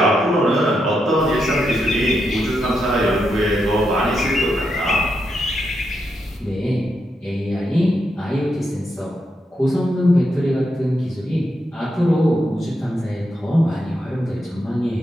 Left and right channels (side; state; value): both; normal; correlation 0.83